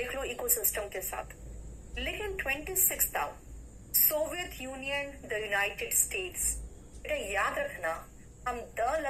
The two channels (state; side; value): identical; both; correlation 1.00